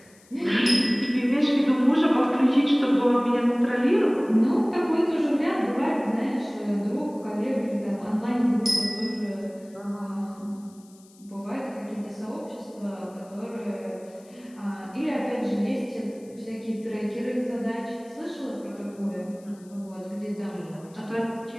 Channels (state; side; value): noise; left; hiss, 28 dB below the sound